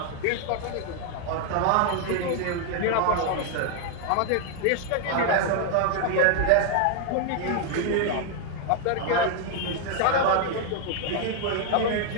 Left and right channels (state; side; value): different; both; correlation 0.01